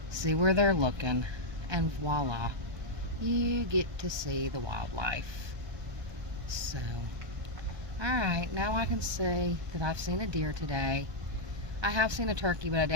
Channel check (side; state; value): left; late; 1.3 ms